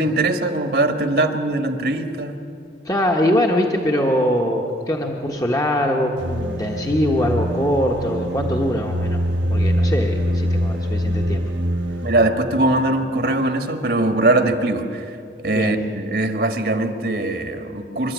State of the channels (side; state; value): both; normal; correlation 0.52